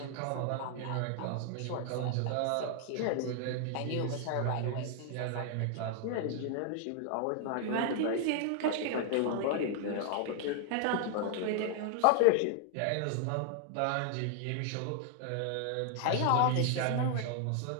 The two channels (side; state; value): both; different; correlation 0.00